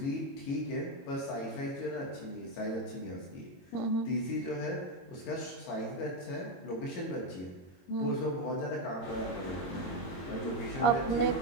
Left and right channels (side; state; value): right; late; 22 ms